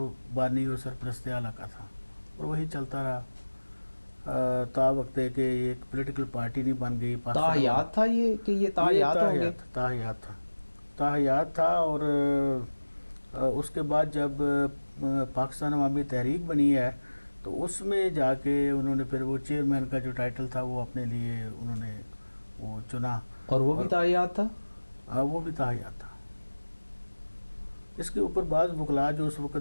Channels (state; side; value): inverted; both; correlation -1.00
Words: بانی و سرپرست اعلیٰ کا تھا، اور وہی چلتا رہا تا وقت ہے کہ ایک پولیٹیکل پارٹی نہیں بن گئی۔ تاحیات تھا یہ کہ یہ تاحیات ہوں گے؟ تاحیات تھا، تاحیات تھا، اور اس کے بعد جب پاکستان عوامی تحریک بنی ہے تو اس میں جا کے انہوں نے پھر وہ چیئرمین کا جو ٹائٹل تھا وہ اپنے لیے انہوں نے وہ چنا، اور وہ بھی تاحیات تھا؟ وہ بھی تاحیات تھا۔ اس کے اوپر بعض وکلاء جو اس